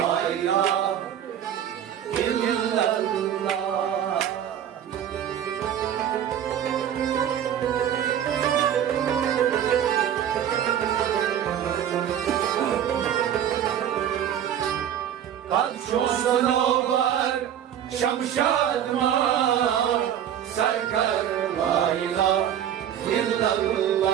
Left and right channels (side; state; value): left; quieter; 9.9 dB